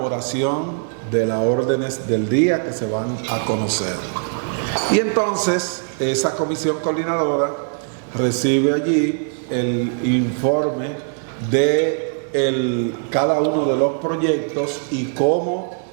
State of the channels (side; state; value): left; silent; 65 dB below the other